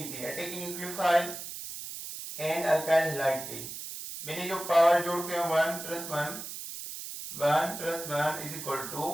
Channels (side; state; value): right; noise; hiss, 9 dB below the sound